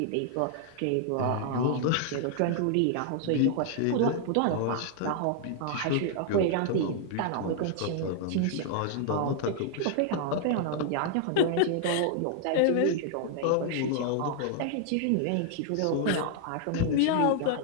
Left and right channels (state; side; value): different; both; correlation -0.01